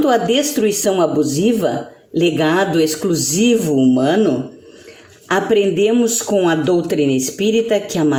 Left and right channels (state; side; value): identical; both; correlation 1.00